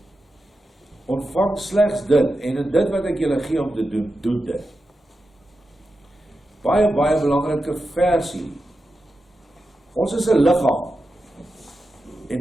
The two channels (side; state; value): both; normal; correlation 0.90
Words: Ontvang slegs dit, en in dit wat ek julle gee om te doen, doen dit. Baie belangrike versie. Ons is 'n liggaam.